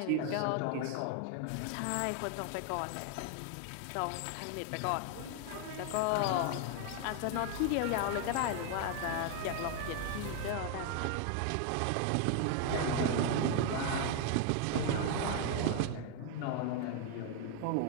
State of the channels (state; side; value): different; both; correlation 0.00